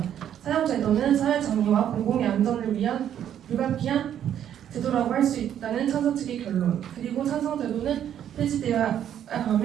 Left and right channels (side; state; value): left; quieter; 10.0 dB